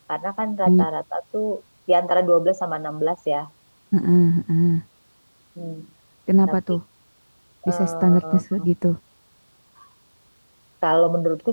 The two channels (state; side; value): inverted; both; correlation -1.00